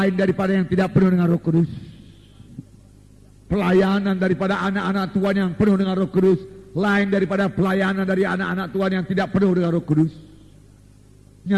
daripada yang tidak penuh dengan Roh Kudus. Pelayanan daripada anak-anak Tuhan yang penuh dengan Roh Kudus lain daripada pelayanan dari anak-anak Tuhan yang tidak penuh dengan Roh Kudus.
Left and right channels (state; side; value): identical; both; correlation 1.00